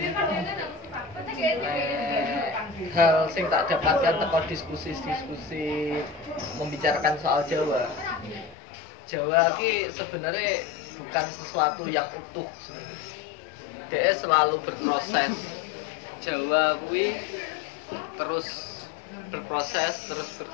Hal sing tak dapatkan teko diskusi membicarakan soal Jawa. Jawa ki sebenarnya bukan sesuatu yang utuh. Dia selalu berproses. Jawa kuwi terus berproses, terus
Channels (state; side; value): drops out; right; at 8.6 s